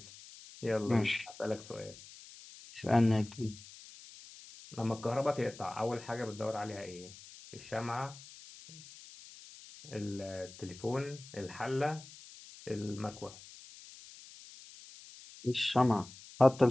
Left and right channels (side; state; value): left; noise; hiss, 18 dB below the sound